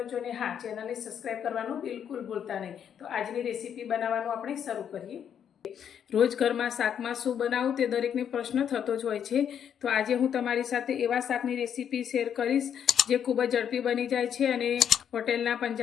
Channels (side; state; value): right; quieter; 8.6 dB